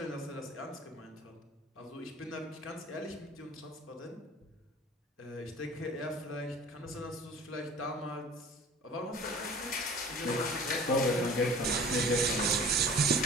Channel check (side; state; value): both; normal; correlation 0.45